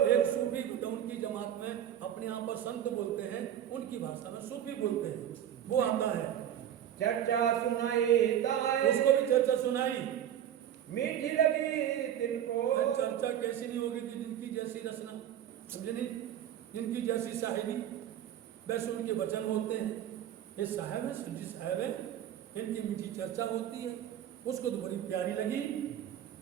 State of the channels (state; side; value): quieter; left; 10.5 dB